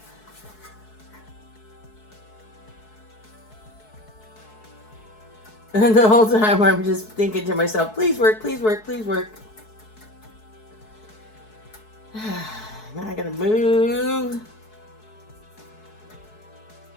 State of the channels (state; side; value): late; right; 4.7 ms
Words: And the whole time I'm just thinking to myself, please work, please work, please work. Now I gotta move.